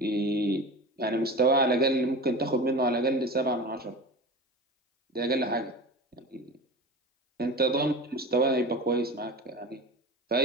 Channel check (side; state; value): both; normal; correlation 0.32